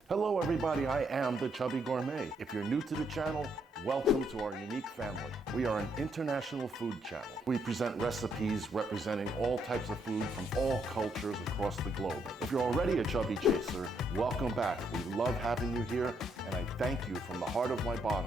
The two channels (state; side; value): normal; both; correlation 0.74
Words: Hello everybody, I am the Chubby Gourmet. If you're new to the channel, welcome to our unique family. We are an international food channel. We present recipes representing all types of food from all cultures across the globe. If you're already a chubby chaser, welcome back. We love having you here, and I thank you from the heart of my